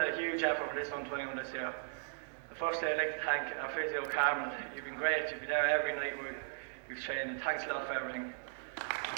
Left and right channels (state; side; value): silent; left; digital silence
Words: huge effort for this under-21 this year. Firstly, I'd like to thank our physio, Carmen. You've been great. You've been there every night we've trained, and thanks a lot for everything.